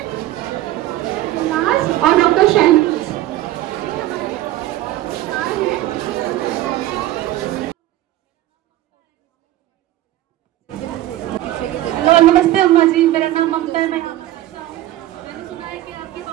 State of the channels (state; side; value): quieter; left; 15.0 dB